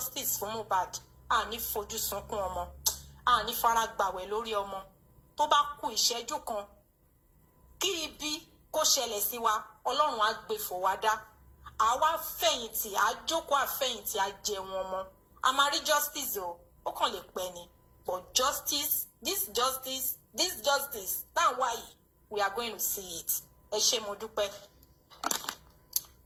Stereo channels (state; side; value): identical; both; correlation 1.00